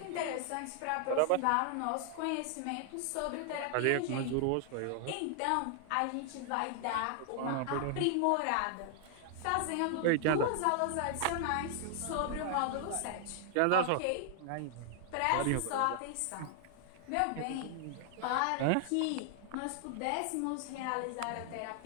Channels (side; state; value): both; different; correlation 0.00